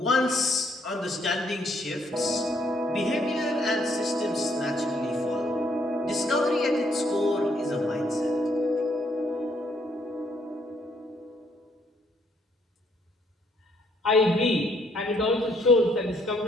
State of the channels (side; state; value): both; normal; correlation 0.69